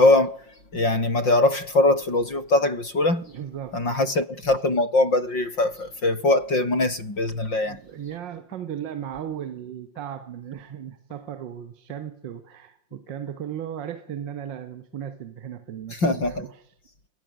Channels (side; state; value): right; late; 5.6 ms